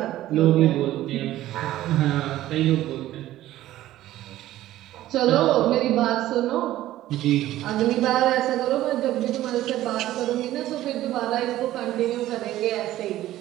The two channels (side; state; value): left; quieter; 14.5 dB